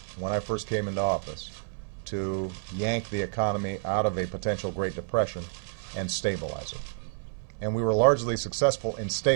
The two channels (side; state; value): left; silent; 58 dB below the other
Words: when I first came into office to yank the economy out of a potential Great Depression and stabilize it. And we were largely successful in